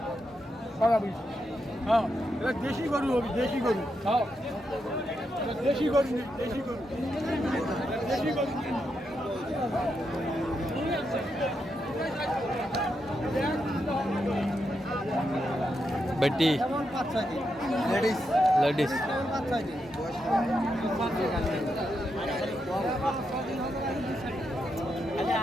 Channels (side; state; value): both; normal; correlation 0.83